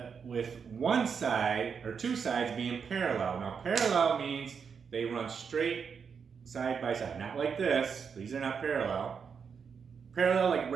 with one side or 2 sides being parallel. Now parallel means they run straight side by side, not like this. These are not parallel. Parallel like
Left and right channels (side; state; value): left; quieter; 6.3 dB